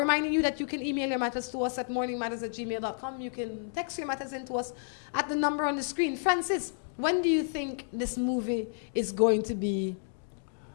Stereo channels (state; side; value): silent; right; digital silence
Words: you that you can email your matters to us at morningmatters@gmail.com. You can text your matters in to us at the number on the screen. Francis, when do you think this movie is going to be